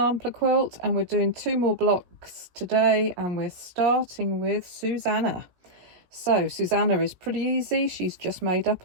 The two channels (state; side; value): late; left; 17 ms